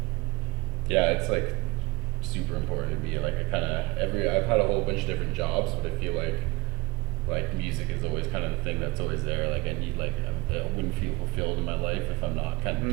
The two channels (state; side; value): quieter; left; 20.5 dB